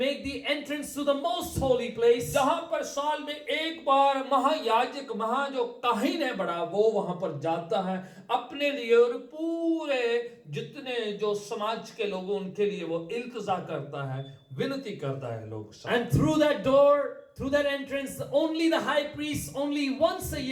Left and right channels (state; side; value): identical; both; correlation 1.00